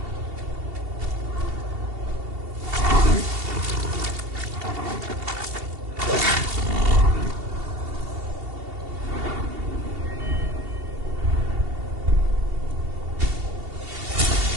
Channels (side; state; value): left; late; 2.7 ms